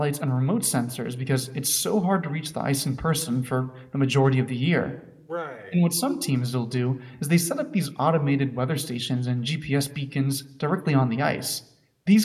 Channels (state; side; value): identical; both; correlation 1.00